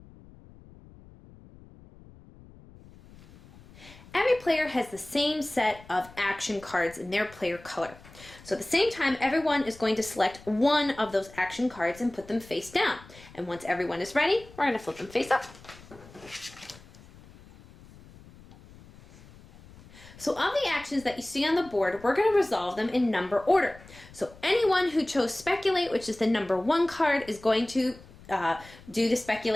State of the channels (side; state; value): left; noise; rumble, 22 dB below the sound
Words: Every player has the same set of action cards in their player color. So at the same time, everyone is going to select one of those action cards and put them face down. And once everyone is ready, we're going to flip them face up. So of the actions that you see on the board, we're going to resolve them in number order. So anyone who chose Speculate, which is the number 1 card, is going to do the